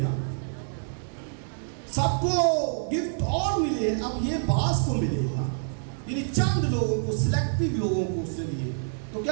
گا، سب کو گفٹ اور ملے، اب یہ بعض کو ملے گا، یعنی چند لوگوں کو، سلیکٹیو لوگوں کو اس نے دیے. تو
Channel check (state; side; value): silent; left; digital silence